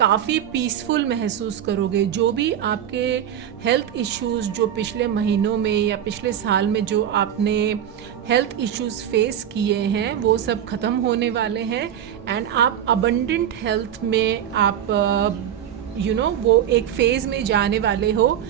पीसफुल महसूस करोगे. जो भी आपके हेल्थ इश्यूज़ जो पिछले महीनों में या पिछले साल में जो आपने हेल्थ इश्यूज़ फेस किए हैं, वो सब ख़त्म होने वाले हैं एंड आप अबंडेंट हेल्थ में आप वो एक फेज़ में जाने वाले हो.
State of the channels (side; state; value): left; quieter; 9.9 dB